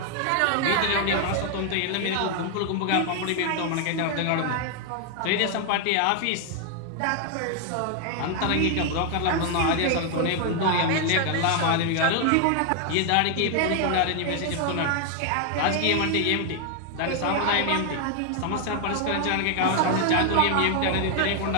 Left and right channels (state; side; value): different; both; correlation 0.00